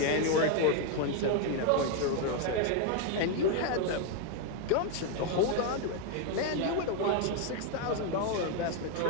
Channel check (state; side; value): different; both; correlation 0.01